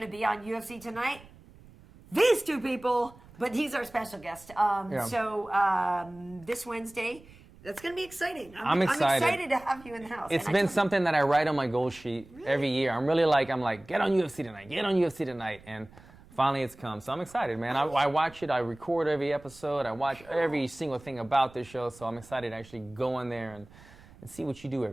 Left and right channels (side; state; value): right; noise; rumble, 23 dB below the sound